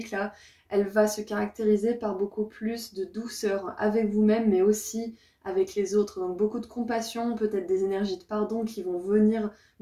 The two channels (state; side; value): identical; both; correlation 1.00